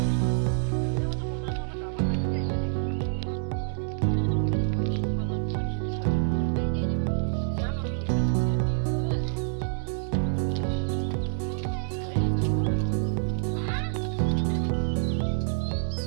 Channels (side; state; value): left; silent; digital silence